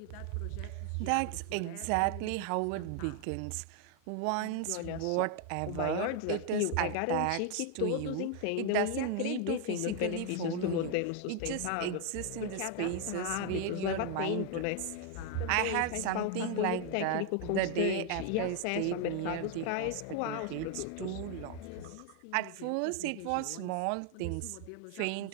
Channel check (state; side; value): different; both; correlation 0.01